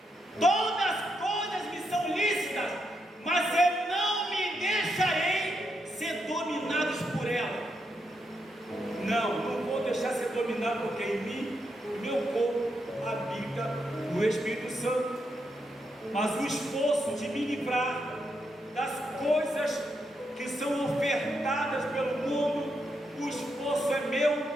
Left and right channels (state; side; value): normal; both; correlation 0.82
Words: Todas as coisas me são lícitas, mas eu não me deixarei ser dominados por ela. Não vou deixar ser dominado, porque em mim, meu corpo, habita o Espírito Santo. Mas o esforço de me livrar das coisas que são ofertadas pelo mundo, o esforço é meu